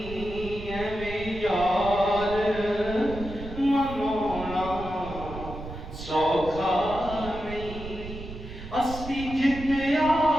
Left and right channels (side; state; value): right; noise; rumble, 11 dB below the sound